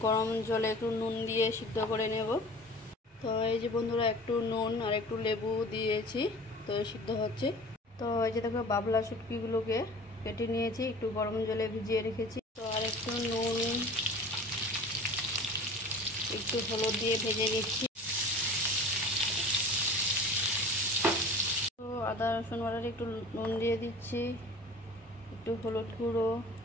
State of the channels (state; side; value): normal; both; correlation 0.41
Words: গরম জলে একটু নুন দিয়ে সিদ্ধ করে নেব। তো এই যে বন্ধুরা, একটু নুন আর একটু লেবু দিয়েছি, তো সিদ্ধ হচ্ছে। তো এই যে দেখো, বাবলা শুটকিগুলোকে কেটে নিয়েছি, একটু গরম জলে ভিজিয়ে রেখেছি। তো আর একটু নুন, একটু হলুদ দিয়ে ভেজে নিচ্ছি। তো আদা রসুন বাটার একটু নুন দিয়ে দিচ্ছি, একটু হলুদ গুঁড়ো